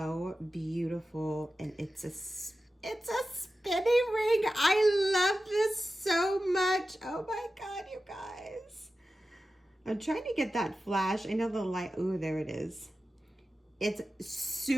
beautiful, and it's a spinning ring. I love this so much. Oh my God, you guys. I'm trying to get that flash. I know the light, ooh, there it is. It's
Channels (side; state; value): both; normal; correlation 0.93